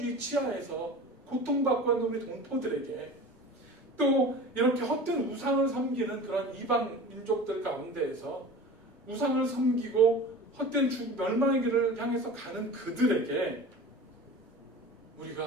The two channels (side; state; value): both; normal; correlation 0.36